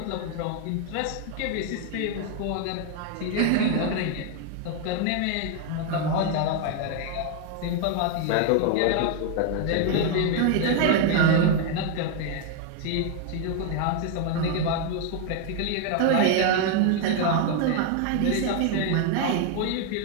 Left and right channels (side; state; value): both; different; correlation 0.00